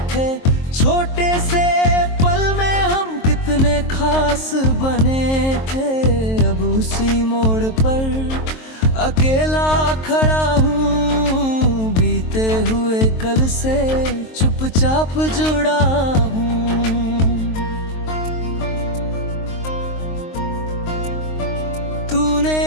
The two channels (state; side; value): late; right; 23 ms